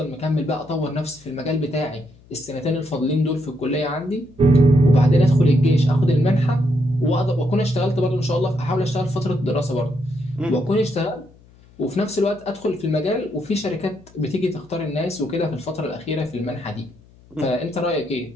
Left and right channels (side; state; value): left; noise; hum, 26 dB below the sound